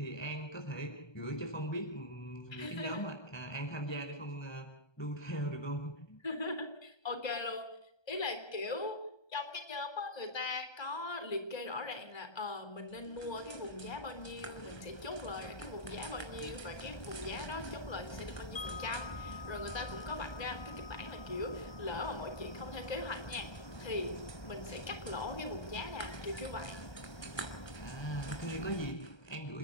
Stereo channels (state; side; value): late; right; 1.3 ms